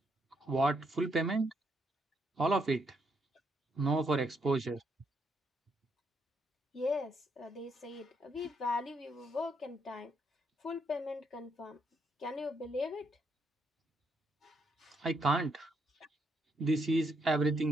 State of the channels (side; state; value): both; normal; correlation 0.76